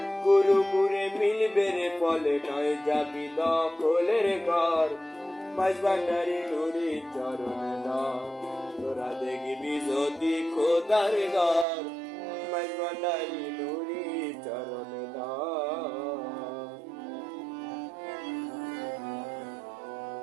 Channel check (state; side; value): drops out; left; at 11.7 s